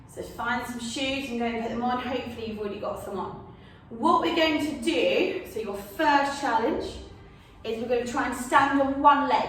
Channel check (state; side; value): identical; both; correlation 1.00